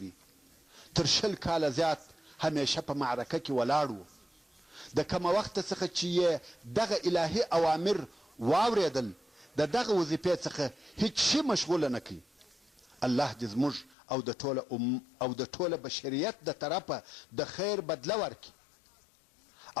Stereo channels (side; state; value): right; drops out; at 14.0 s